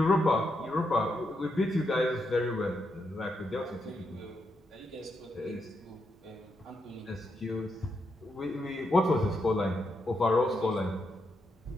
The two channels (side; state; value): both; normal; correlation 0.82